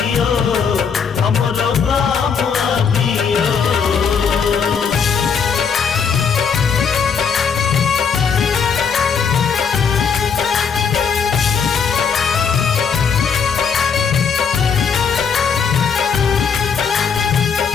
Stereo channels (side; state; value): right; quieter; 6.4 dB